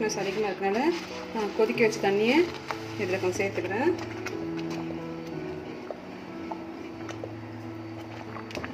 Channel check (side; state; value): both; identical; correlation 1.00